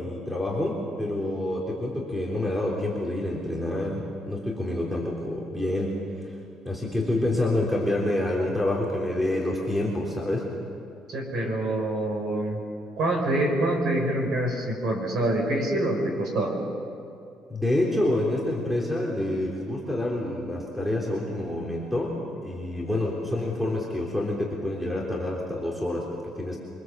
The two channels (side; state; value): both; normal; correlation 0.77